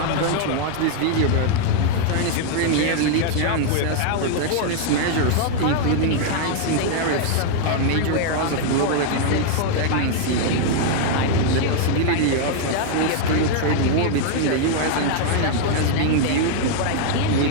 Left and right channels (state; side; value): different; both; correlation -0.01